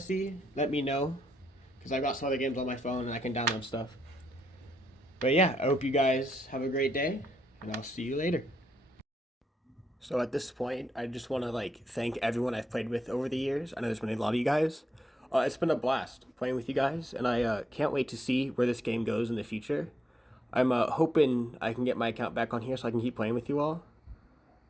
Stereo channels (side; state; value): both; normal; correlation 0.80